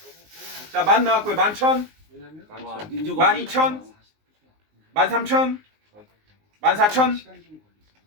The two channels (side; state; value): left; late; 19 ms